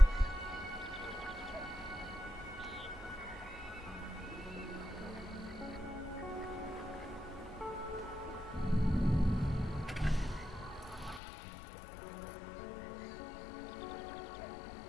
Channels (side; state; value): right; drops out; at 11.2 s